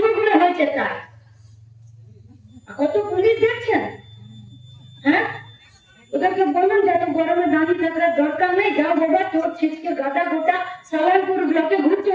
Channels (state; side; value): identical; both; correlation 1.00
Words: করে হয়েছে তাই। কত পুলিশ দেখছেন, হ্যাঁ? ওদেরকে বললাম যে এত গরমে দাঁড়িয়ে থাকার দরকার নেই, যাও বাবা তোর ছিটকে গাদা গোটা সালানপুর ব্লকে ঘুরছে,